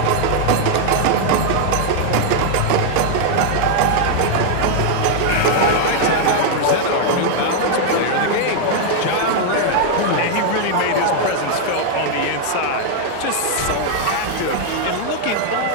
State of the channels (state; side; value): different; both; correlation 0.00